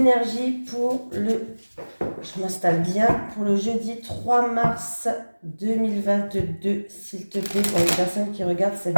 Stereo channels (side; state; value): both; inverted; correlation -1.00